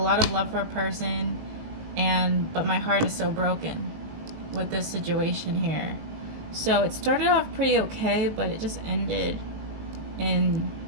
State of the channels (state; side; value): late; left; 19 ms